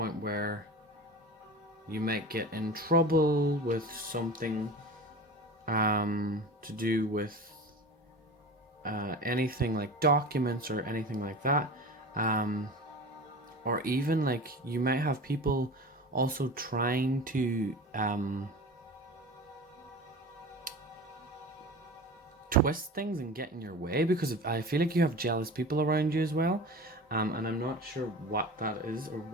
where you might get in trouble with something, to do with anything like documents or anything like that. Or even like you might have people also trying to twist things and get in your way, because I feel like you have jealous people around you as well, and I'm not sure what that is or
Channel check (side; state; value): both; normal; correlation 0.34